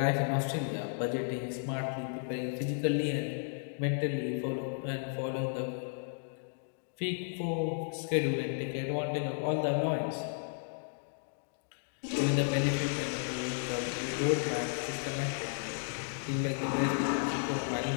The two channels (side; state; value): right; silent; digital silence